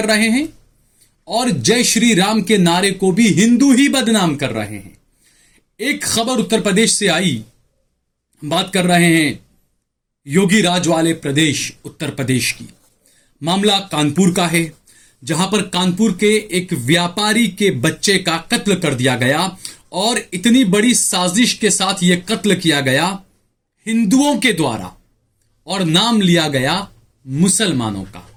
रहे हैं और जय श्री राम के नारे को भी हिंदू ही बदनाम कर रहे हैं। एक खबर उत्तर प्रदेश से आई, बात कर रहे हैं योगी राज वाले प्रदेश उत्तर प्रदेश की। मामला कानपुर का है, जहां पर कानपुर के एक व्यापारी के बच्चे का कत्ल कर दिया गया और इतनी बड़ी साजिश के साथ यह कत्ल किया गया हिंदुओं के द्वारा और नाम लिया गया मुसलमानों का।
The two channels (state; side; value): identical; both; correlation 1.00